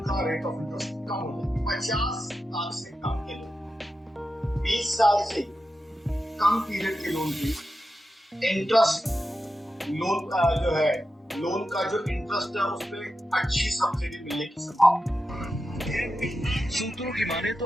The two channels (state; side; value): normal; both; correlation 0.90